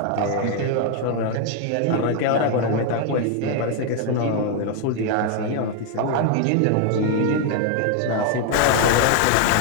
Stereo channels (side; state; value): both; different; correlation 0.01